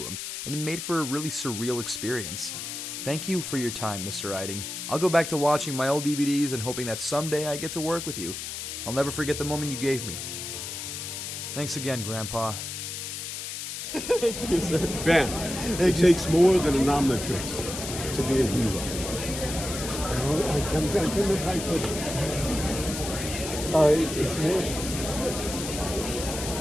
him, and it made for a really surreal experience. Thank you for your time, Mr. Eiding. I'll go back to watching my old DVDs and hoping that someday I get to work with you. I'll never forget the moment you gave me. Thanks again, Grandpa. Thank you, sir. Ben, it takes more than a nominatrix to be a hero. I'm trying to remember how I put it. It's more...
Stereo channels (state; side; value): noise; left; hiss, 6 dB below the sound